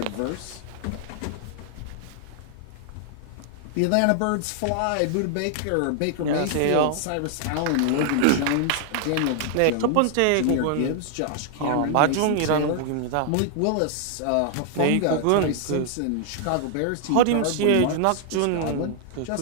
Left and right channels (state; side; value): different; both; correlation -0.01